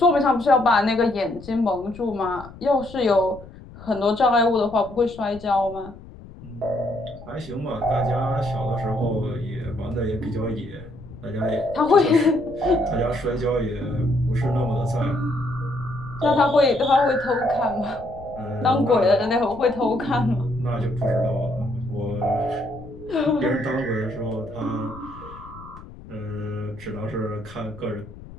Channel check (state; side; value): noise; left; rumble, 17 dB below the sound